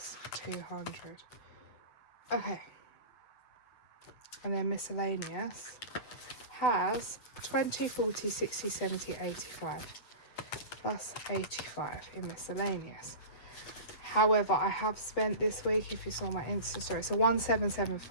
200. Okay. And then miscellaneous has 20, 40, 60, 70, 85 plus 85 in miscellaneous. However, I have spent this week, if you saw my Insta story, so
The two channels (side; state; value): right; late; 8.2 ms